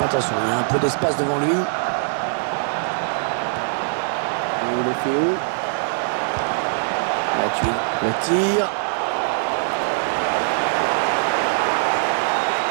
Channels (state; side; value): silent; left; digital silence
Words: Attention, il y a un peu d'espace devant lui. Deulofeu. Matuidi. Le tir.